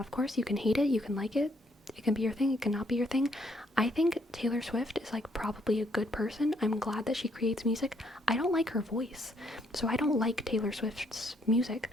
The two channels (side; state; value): both; normal; correlation 0.70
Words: course you can hate it, you can like it, it can be your thing, it cannot be your thing. I think Taylor Swift is like probably a good person. I'm glad that she creates music. I don't like her voice, so I don't like Taylor Swift's music,